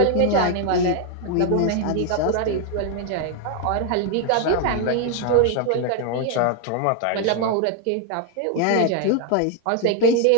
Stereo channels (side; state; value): both; different; correlation 0.01